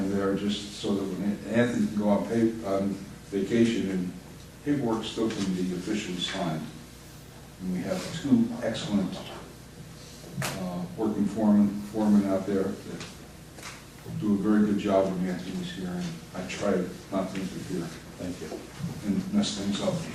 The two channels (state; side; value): identical; both; correlation 1.00